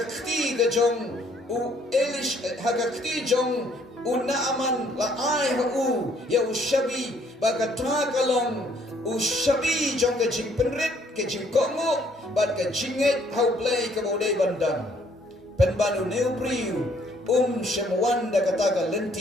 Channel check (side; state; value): both; normal; correlation 0.65